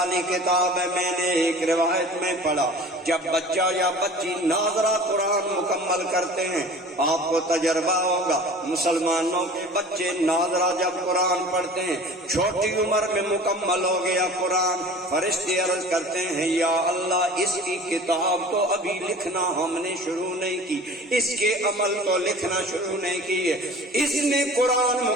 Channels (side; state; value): both; normal; correlation 0.42